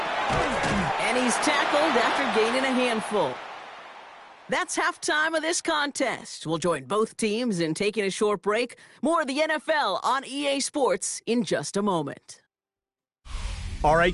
And he's tackled after gaining a handful. That's halftime of this contest. We'll join both teams in taking a short break. More of the NFL on EA Sports in just a moment. All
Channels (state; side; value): identical; both; correlation 1.00